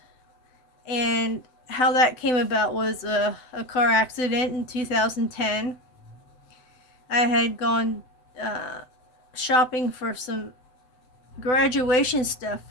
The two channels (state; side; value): late; right; 8.0 ms